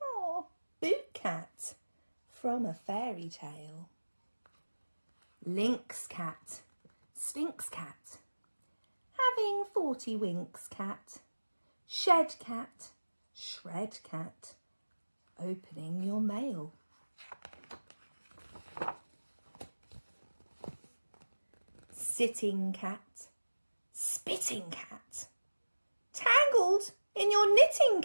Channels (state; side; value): inverted; both; correlation -1.00